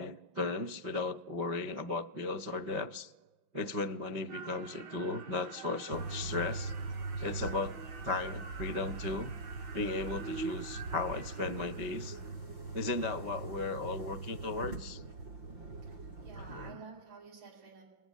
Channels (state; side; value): late; left; 5.9 ms